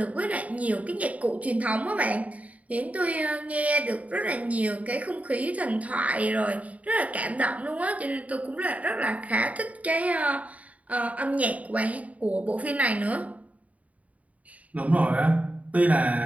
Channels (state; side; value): late; left; 0.069 ms